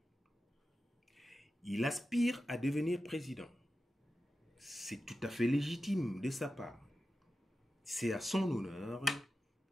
Il aspire à devenir président. C'est tout à fait légitime de sa part. C'est à son honneur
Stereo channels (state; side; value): normal; both; correlation 0.92